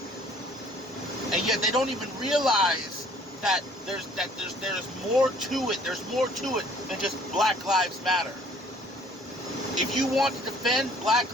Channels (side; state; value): both; normal; correlation 0.56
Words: and yet they don't even realize that there's more to it. There's more to it than just Black Lives Matter. If you want to defend Black